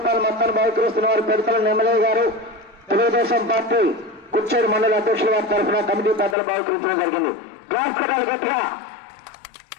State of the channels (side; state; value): right; drops out; at 6.4 s